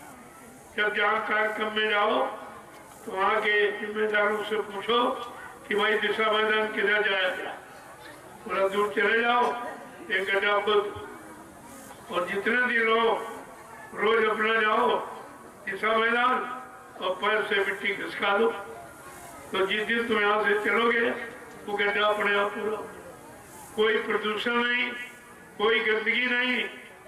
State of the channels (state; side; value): identical; both; correlation 1.00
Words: जब जहाँ कार्यक्रम में जाओ तो वहाँ के जिम्मेदारों से पूछो कि भाई दिशा मैदान किधर जाया गया। थोड़ा दूर चले जाओ, एक गड्ढा खोद, और जितने दिन रहो रोज अपना जाओ दिशा मैदान और पैर से मिट्टी खिसका दो। तो जिस दिन तुम यहाँ से चलोगे वो गड्ढा अपने आप पूरा, कोई प्रदूषण नहीं, कोई गंदगी नहीं,